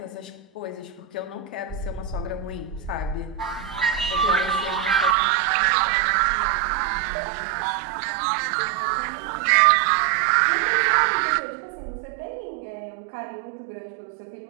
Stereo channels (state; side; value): drops out; left; at 5.2 s